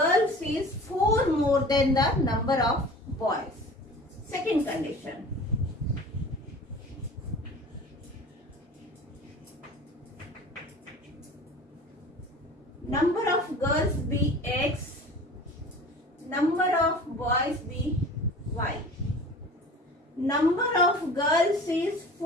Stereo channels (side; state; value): both; normal; correlation 0.41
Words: is 4 more than the number of boys. Second condition. Number of girls be X, number of boys be Y. Number of girls is